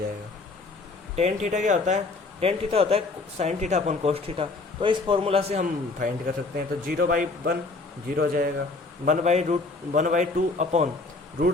टेन थीटा क्या होता है? टेन थीटा होता है sine theta upon cos theta, तो इस फॉर्मूला से हम फाइंड कर सकते हैं। तो 0/1 0 हो जाएगा, 1/2 अपॉन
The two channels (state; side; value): quieter; right; 3.5 dB